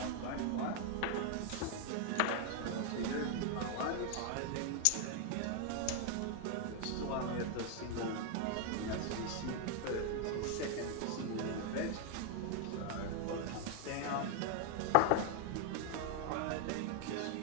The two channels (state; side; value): different; both; correlation 0.00